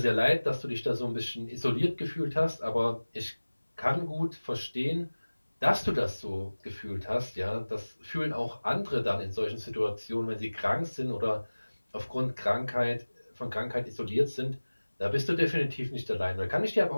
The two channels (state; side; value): inverted; both; correlation -1.00